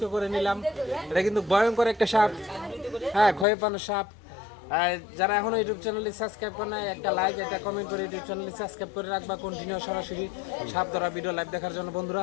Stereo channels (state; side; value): drops out; right; at 3.5 s